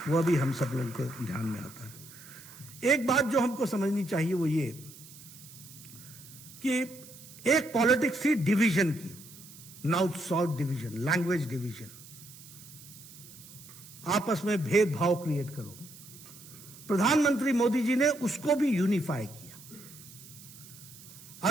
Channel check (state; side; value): noise; right; hiss, 18 dB below the sound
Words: वह भी हम सब लोगों को ध्यान में आता है। एक बात जो हमको समझनी चाहिए वो ये कि एक पॉलिटिक्स थी डिवीजन की, north south division, language division, आपस में भेदभाव क्रिएट करो। प्रधानमंत्री मोदी जी ने उसको भी यूनिफाई किया।